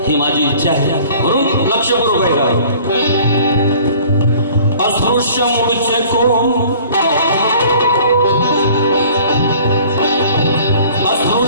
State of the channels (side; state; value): both; inverted; correlation -0.50